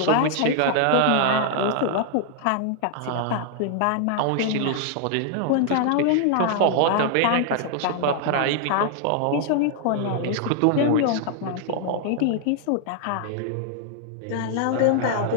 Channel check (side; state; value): both; different; correlation 0.00